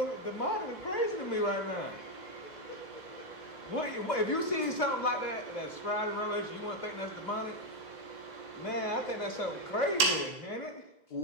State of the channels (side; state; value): right; late; 2.0 ms